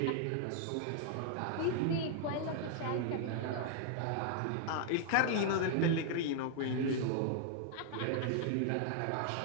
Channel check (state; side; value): different; both; correlation 0.00